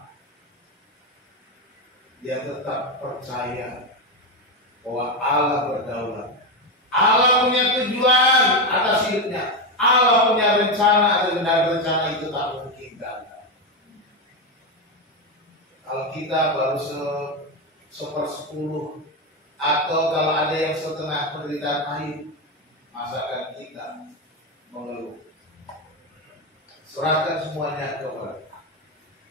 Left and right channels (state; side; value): normal; both; correlation 0.11